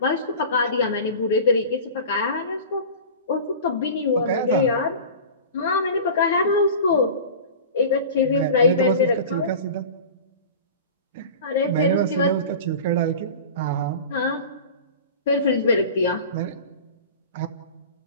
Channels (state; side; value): inverted; both; correlation -0.35